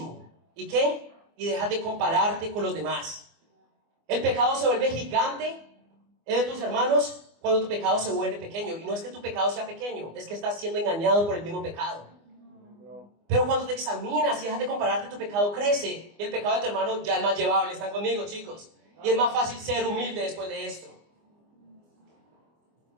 ¿Y qué? Y dejas de compararte con los demás. El pecado se vuelve gigante de tus hermanos cuando tu pecado se vuelve pequeño. Y no es que tu pecado sea pequeño, es que estás siendo engañado por el mismo pecado. Pero cuando te examinas y dejas de compararte, tu pecado crece. Y el pecado de tu hermano ya es más llevable. ¿Están conmigo, chicos? Y es más fácil ser humilde después de esto.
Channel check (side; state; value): left; late; 24 ms